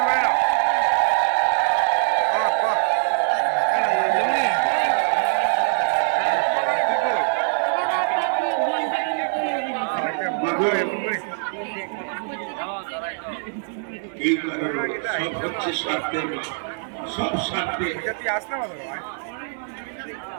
সব হচ্ছে স্বার্থের সব স্বার্থে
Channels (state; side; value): silent; left; digital silence